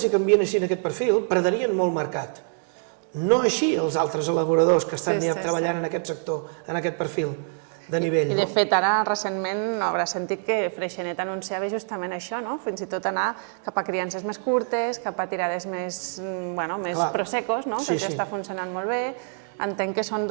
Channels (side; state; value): left; silent; 61 dB below the other